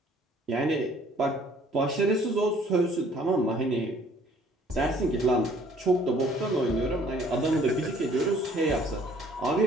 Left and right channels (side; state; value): both; normal; correlation 0.58